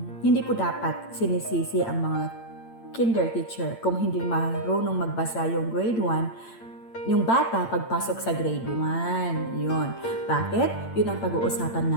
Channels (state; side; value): late; right; 8.8 ms